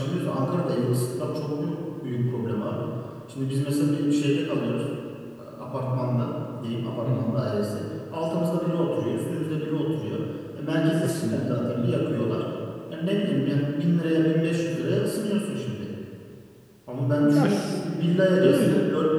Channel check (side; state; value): both; identical; correlation 1.00